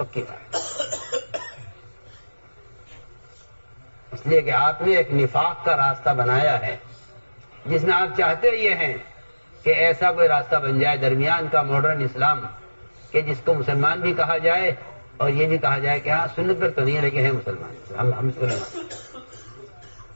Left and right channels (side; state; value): both; inverted; correlation -1.00